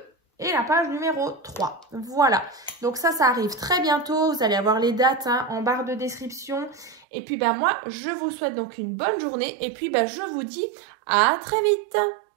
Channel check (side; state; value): left; drops out; at 7.1 s